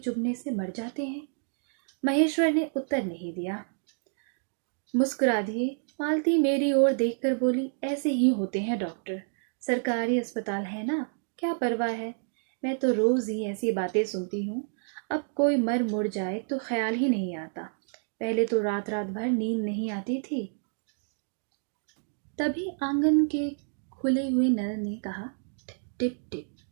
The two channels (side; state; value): left; silent; digital silence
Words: से मर जाते हैं। महेश्वर ने उत्तर नहीं दिया, मुस्कुरा दिए। मालती मेरी ओर देखकर बोली, ऐसे ही होते हैं डॉक्टर, सरकारी अस्पताल है ना, क्या परवाह है। मैं तो रोज ही ऐसी बातें सुनती हूँ, अब कोई मर मुड़ जाए तो ख्याल ही नहीं आता। पहले तो रात रात भर नींद नहीं आती थी। तभी आंगन के खुले हुए नल ने कहा, टिप टिप।